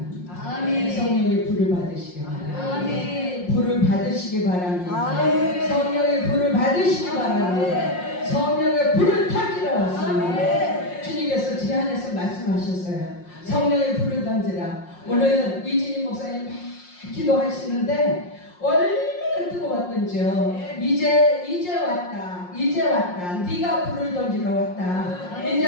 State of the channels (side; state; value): right; late; 5.6 ms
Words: 성령의 불을 받으시기 바랍니다. 불을 받으시기 바랍니다. 성령의 불을 받으시기 바랍니다. 성령의 불을 타기로 왔습니다. 주님께서 제 안에서 말씀하셨어요. 성령의 불을 던지라. 오늘 이진희 목사님 막 기도하시는데 얼마나 뜨거웠던지요. 이제 왔다. 이제 왔다. 네가 불을 던지러 왔다.